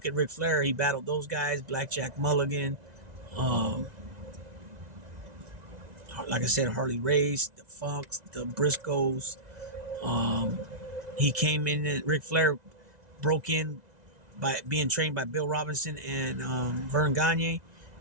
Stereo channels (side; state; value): left; late; 2.0 ms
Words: at Ric Flair, he battled those guys: Blackjack Mulligan, like I said, Harley Race, the Funks, the Briscoes. He came in, and Ric Flair broke in by being trained by Bill Robinson and Vern Gagne.